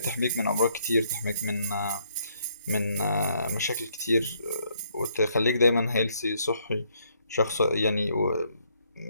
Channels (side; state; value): both; inverted; correlation -0.71